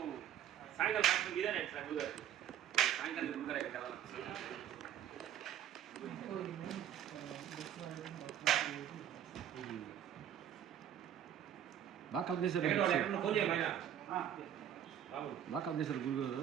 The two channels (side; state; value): left; quieter; 10.3 dB